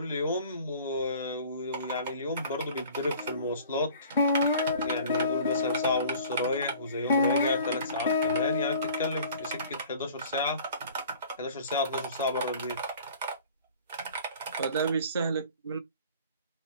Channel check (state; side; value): inverted; both; correlation -0.48